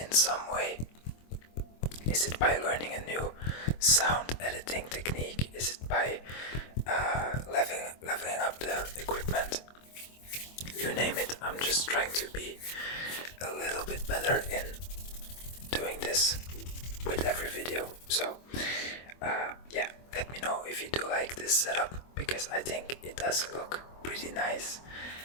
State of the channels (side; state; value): right; late; 24 ms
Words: some way. Is it by learning a new sound editing technique? Is it by leveling up the equipment? You name it, I'm just trying to be a little bit better in doing this with every video. So yeah, let me know if you do like this setup, because I think it does look pretty nice.